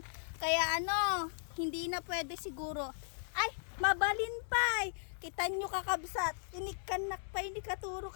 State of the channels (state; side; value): silent; right; digital silence